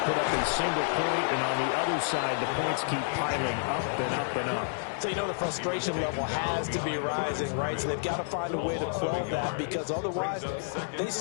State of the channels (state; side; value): silent; right; digital silence